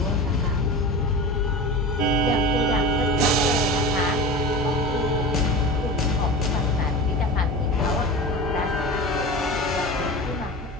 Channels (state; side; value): normal; both; correlation 0.31